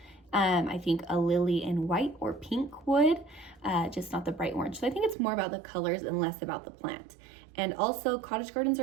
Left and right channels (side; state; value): left; drops out; at 5.2 s